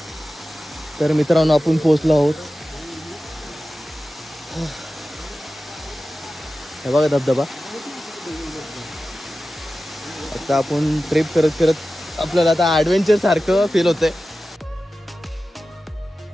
तर मित्रांनो आपण पोहोचलो आहोत. हे बघा धबधबा. आता आपण ट्रिप करत करत आपल्याला आता ॲडव्हेंचर सारखं फील होतंय.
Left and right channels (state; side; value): normal; both; correlation 0.94